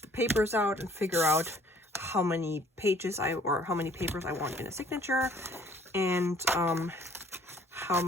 the papers out and figure out how many pages how many papers I want in a signature, and how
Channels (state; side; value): normal; both; correlation 0.56